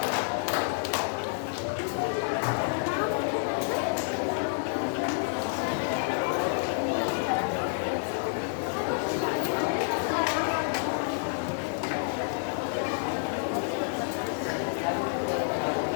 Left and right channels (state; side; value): silent; right; 59 dB below the other